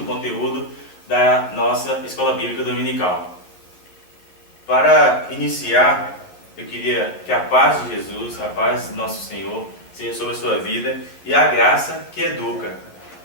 conteúdo da nossa Escola Bíblica Dominical. Para iniciar, eu queria que a paz de Jesus, a paz do nosso Senhor, seja sobre a sua vida e a graça que educa.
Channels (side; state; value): right; late; 11 ms